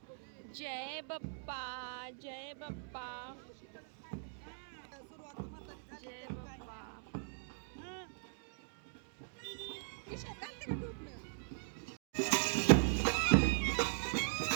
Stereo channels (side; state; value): left; silent; digital silence